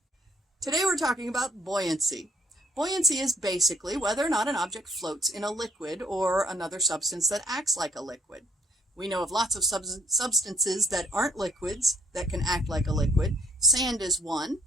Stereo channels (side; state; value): both; normal; correlation 0.64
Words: Today we're talking about buoyancy. Buoyancy is basically whether or not an object floats in a liquid or another substance that acts like a liquid. We know of lots of substances that aren't liquids that can act like a liquid. Sand is one.